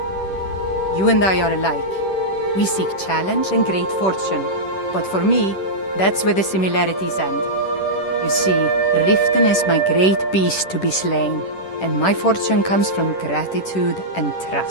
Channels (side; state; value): right; late; 10 ms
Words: You and I are alike. We seek challenge and great fortune. But for me, that's where the similarities end. You see, Riften is my great beast to be slain, and my fortune comes from gratitude and